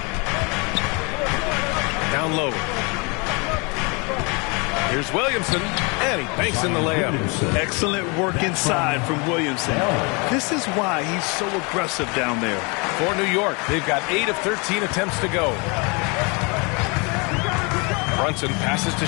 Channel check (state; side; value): quieter; right; 30.6 dB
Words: Down low. Here's Williamson, and he banks in the layup. Excellent work inside from Williamson. This is why he's so aggressive down there. For New York, they've got 8 of 13 attempts to go. Brunson passes to